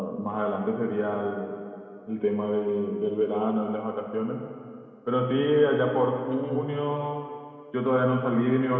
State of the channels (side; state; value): both; identical; correlation 1.00